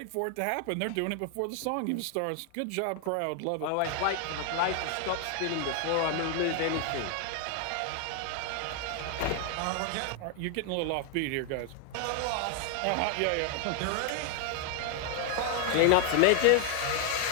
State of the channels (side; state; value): both; different; correlation 0.00